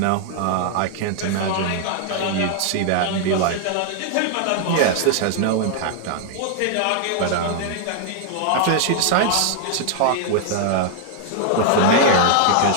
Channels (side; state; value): both; different; correlation 0.00